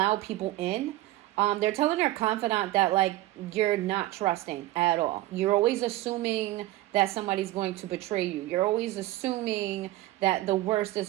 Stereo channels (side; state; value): left; quieter; 16.8 dB